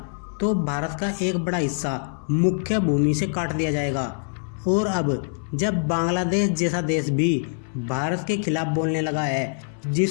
तो भारत का एक बड़ा हिस्सा मुख्य भूमि से काट दिया जाएगा। और अब जब बांग्लादेश जैसा देश भी भारत के खिलाफ बोलने लगा है,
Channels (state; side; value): silent; right; 62 dB below the other